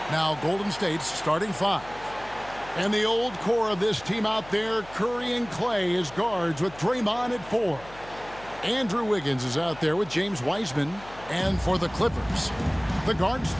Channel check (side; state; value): left; noise; hum, 20 dB below the sound